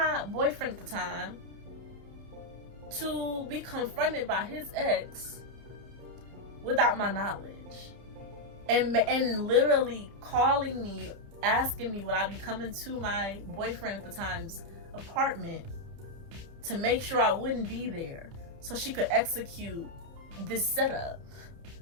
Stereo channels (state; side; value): late; left; 30 ms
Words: boyfriend at the time to be confronted by his ex without my knowledge, and literally calling me, asking me would I be coming to my boyfriend at the time's apartment to make sure I wouldn't be there so she could execute this setup.